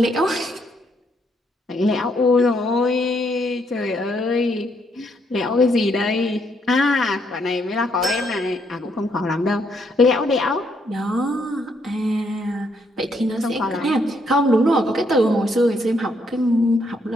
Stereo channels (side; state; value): both; normal; correlation 0.73